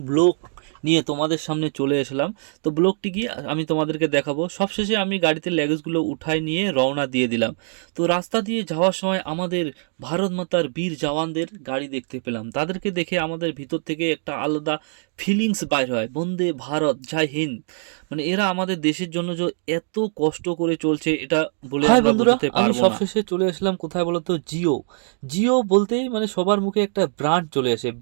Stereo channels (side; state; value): left; silent; digital silence